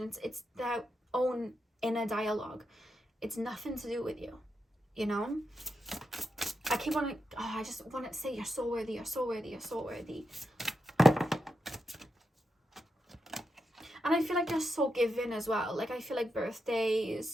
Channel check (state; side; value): normal; both; correlation 0.86